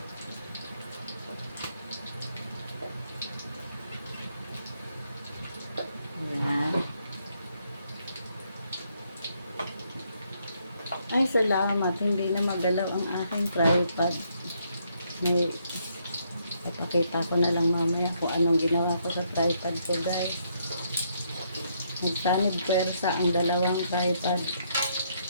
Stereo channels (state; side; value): inverted; both; correlation -0.74